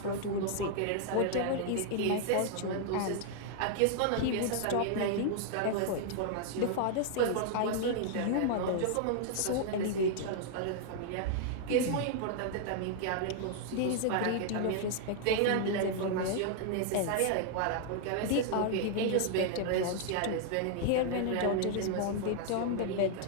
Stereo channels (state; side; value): different; both; correlation -0.01